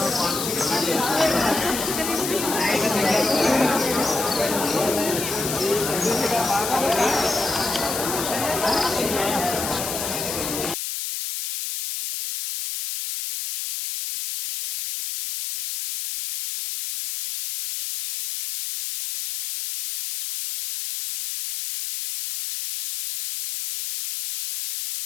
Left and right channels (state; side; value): noise; left; hiss, 4 dB below the sound